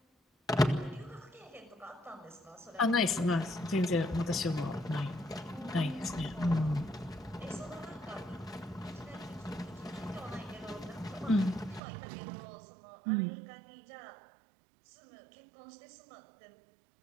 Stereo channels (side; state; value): left; drops out; at 11.8 s